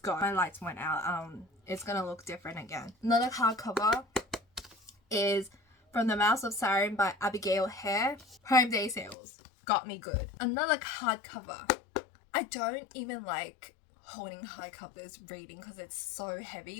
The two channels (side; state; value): right; drops out; at 9.2 s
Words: My lights went out. It's gonna look different again. Another hardcover is From the Mouth of Siren by Abigail Hare. Prime Day sales. Got me good. Another hardcover. I don't even like holding hardcovers reading because it's so